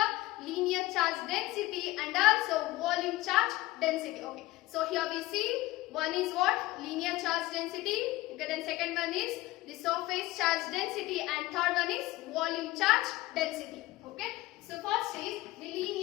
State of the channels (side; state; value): right; quieter; 18.2 dB